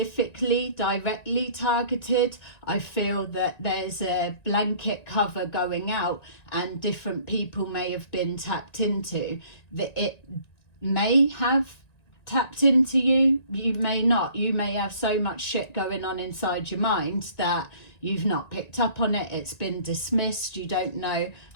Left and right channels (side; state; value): right; late; 1.9 ms